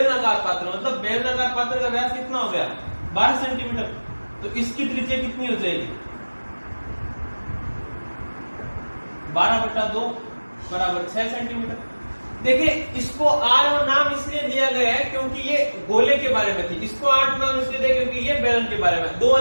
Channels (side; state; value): both; inverted; correlation -1.00